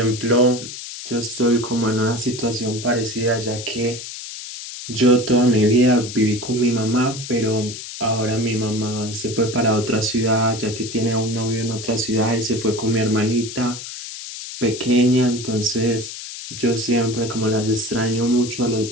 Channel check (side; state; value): left; noise; hiss, 10 dB below the sound